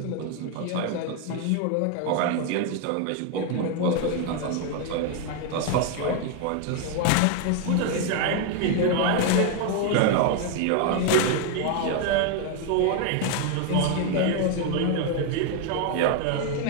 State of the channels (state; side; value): different; both; correlation 0.01